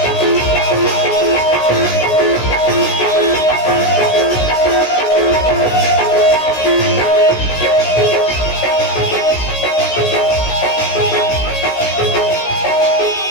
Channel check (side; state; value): right; late; 16 ms